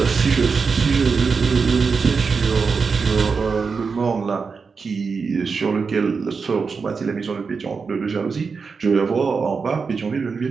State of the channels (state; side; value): quieter; left; 5.1 dB